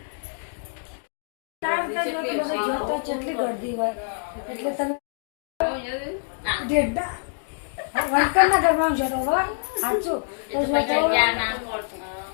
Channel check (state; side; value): silent; right; digital silence